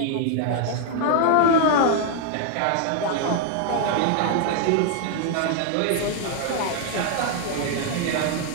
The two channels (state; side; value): different; both; correlation 0.00